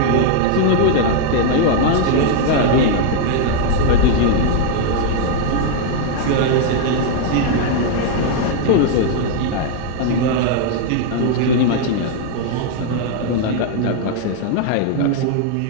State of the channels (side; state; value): both; different; correlation 0.00